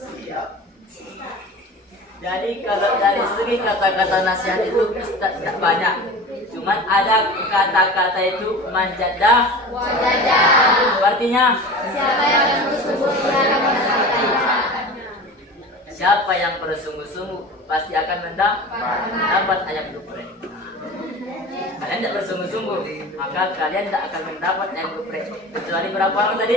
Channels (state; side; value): normal; both; correlation 0.35